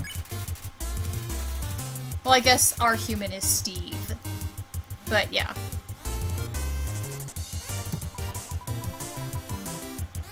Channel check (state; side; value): identical; both; correlation 1.00